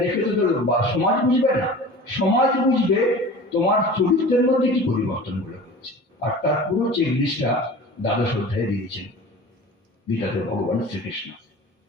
দেখে তো সমাজ বুঝবে না। সমাজ বুঝবে তোমার চরিত্রের মধ্যে কি পরিবর্তন গুলো। আর তার পুরো চেকলিস্টটা দ্বাদশ অধ্যায়ে দিয়েছেন গীতাতে ভগবান শ্রীকৃষ্ণ।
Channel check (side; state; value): both; normal; correlation 0.39